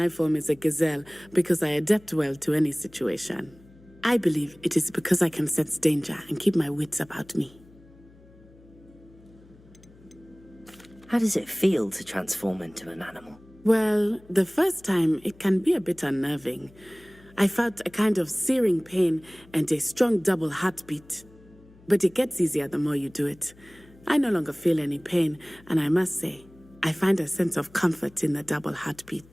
form is a gazelle because I adapt well to any situation. I believe it is because I can sense danger and keep my wits about me. How does it feel to transform into an animal? Well, the first time it can be a bit unnerving. I felt a kind of searing pain and a strong double heartbeat. But it gets easier the more you do it. I no longer feel any pain, and I must say, I find a sense of comfort in the double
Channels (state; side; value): noise; left; hum, 25 dB below the sound